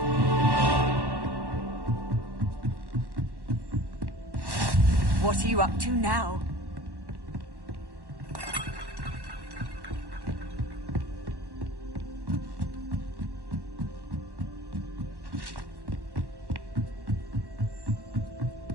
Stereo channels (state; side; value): late; left; 1.1 ms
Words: What are you up to now?